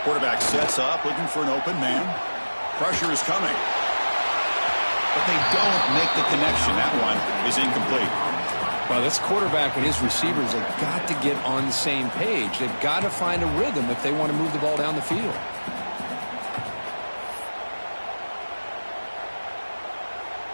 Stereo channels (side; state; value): both; inverted; correlation -1.00